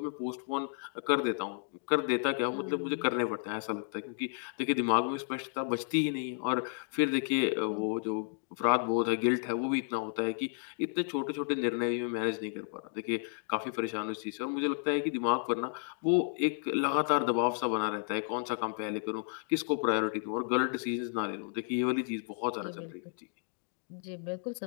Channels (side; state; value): right; silent; 56 dB below the other